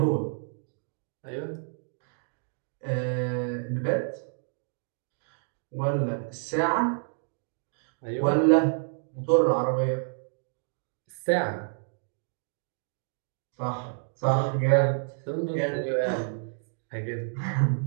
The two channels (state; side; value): silent; left; digital silence